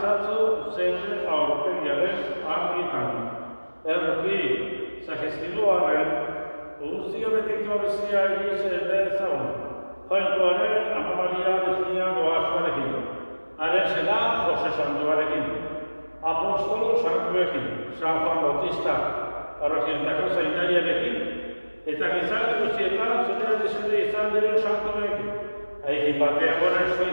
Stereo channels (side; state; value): both; inverted; correlation -1.00